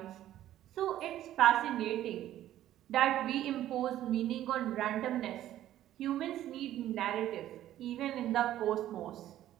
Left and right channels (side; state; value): left; quieter; 12.8 dB